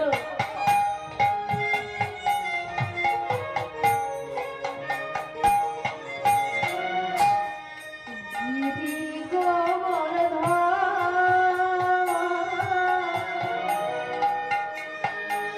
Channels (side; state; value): both; identical; correlation 1.00